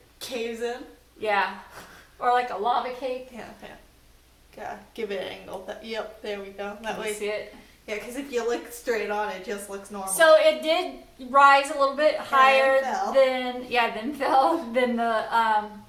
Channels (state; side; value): identical; both; correlation 1.00